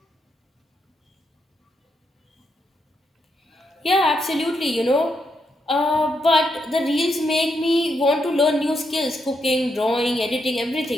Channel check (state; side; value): normal; both; correlation 0.80